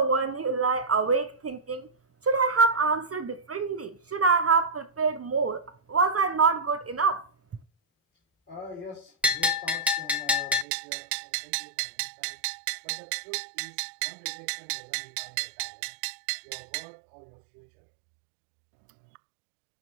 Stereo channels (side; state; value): left; drops out; at 10.7 s